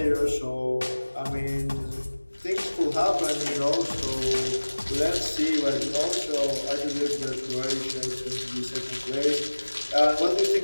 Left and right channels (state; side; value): inverted; both; correlation -1.00